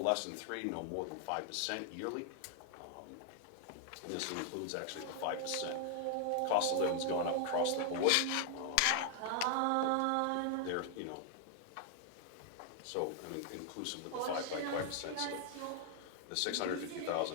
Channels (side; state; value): both; different; correlation 0.00